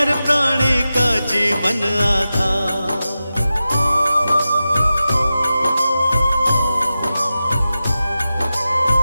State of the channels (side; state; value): both; inverted; correlation -0.93